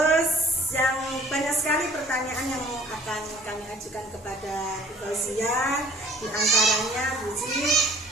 yang banyak sekali pertanyaan yang akan kami ajukan kepada Bu Fauzia, di antaranya Bu Uci,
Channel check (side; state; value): both; normal; correlation 0.53